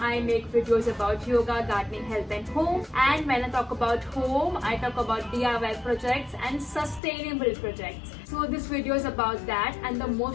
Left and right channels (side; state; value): right; drops out; at 7.0 s